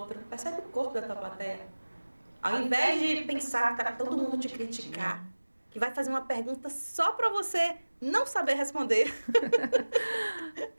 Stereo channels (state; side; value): inverted; both; correlation -1.00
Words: percebe o corpo da tua plateia. Ao invés de pensar que está todo mundo te criticar, que vai fazer uma pergunta só para você não saber responder.